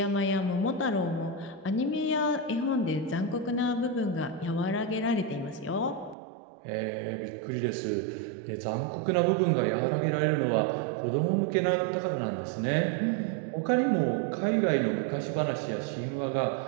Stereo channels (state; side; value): drops out; left; at 6.2 s